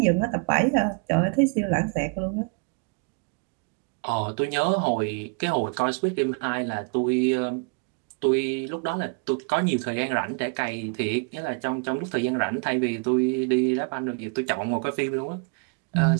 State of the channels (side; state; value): left; quieter; 38.1 dB